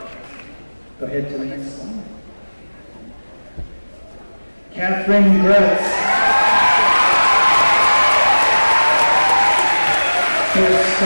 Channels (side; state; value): both; inverted; correlation -1.00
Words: Go ahead to the next slide. Catherine Gretz. For